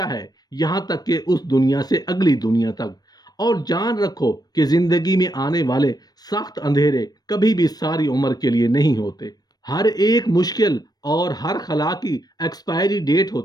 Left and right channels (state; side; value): late; right; 0.19 ms